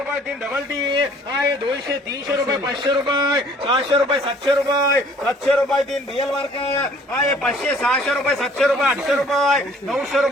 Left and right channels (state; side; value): normal; both; correlation 0.55